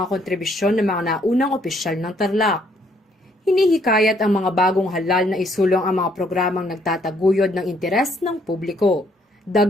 kontribusyon ng mga naunang opisyal ng Tarlac. Hinihikayat ang mga bagong halal na isulong ang mga programang nagtataguyod ng interes ng publiko.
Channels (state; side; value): normal; both; correlation 0.68